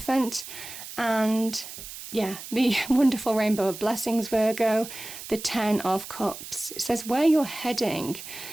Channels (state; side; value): noise; right; hiss, 12 dB below the sound